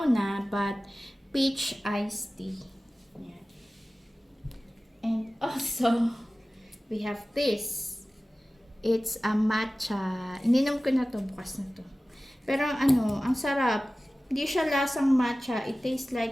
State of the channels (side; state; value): both; normal; correlation 0.97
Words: but peach iced tea. Yan. And also, we have this. It's a matcha. Ininom ko na to, bukas na to. Pero ano, ang sarap. Hindi siya lasang matcha. It tastes